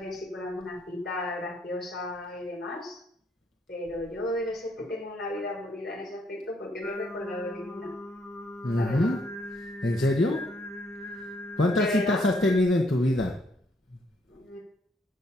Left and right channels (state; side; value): normal; both; correlation 0.70